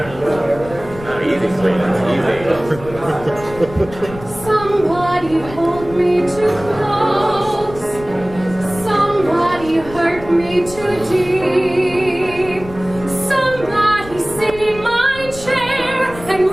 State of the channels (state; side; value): noise; left; rumble, 15 dB below the sound